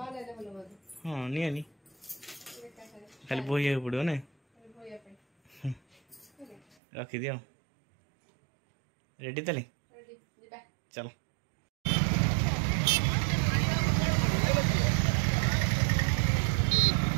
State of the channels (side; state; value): left; drops out; at 6.8 s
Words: हाँ नहीं खाली बोई पड़ो ना रखी दियो रेडी ताले चलो